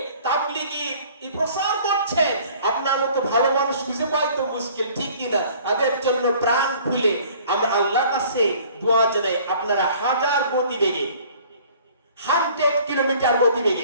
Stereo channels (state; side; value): inverted; both; correlation -0.53